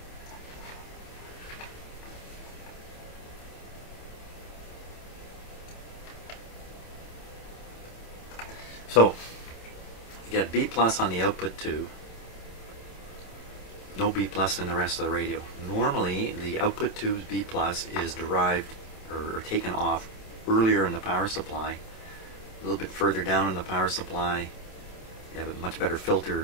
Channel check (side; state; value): right; late; 27 ms